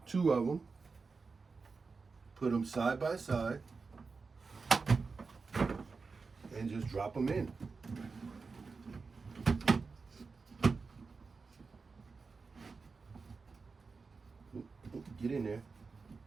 2 of them, put them side by side, and just drop them in. Get in there.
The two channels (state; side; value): quieter; left; 4.5 dB